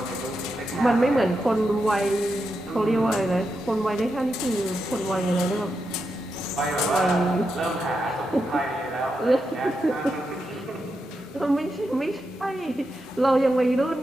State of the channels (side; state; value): both; normal; correlation 0.86